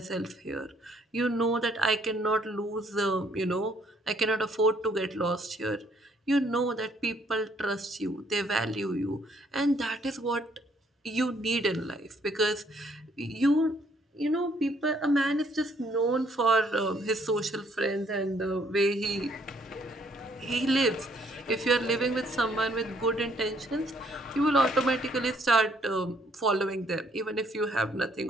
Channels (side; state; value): both; normal; correlation 0.66